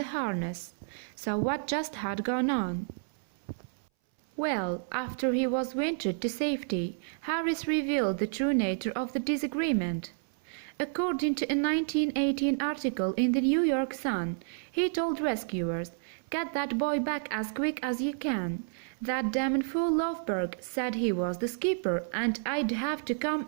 harness. So what just had gone on? Well, after he was wintered to safety, Harris revealed the true nature of the disagreement. According to a 1918 article in the New York Sun, he told rescuers, "Get that boy back as quick as you can. That damn fool Lofberg said he was the skipper and I'd have to come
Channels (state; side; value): silent; left; 58 dB below the other